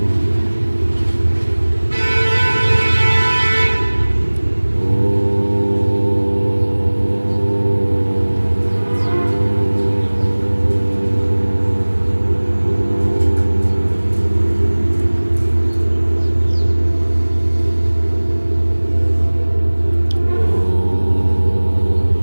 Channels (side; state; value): both; inverted; correlation -1.00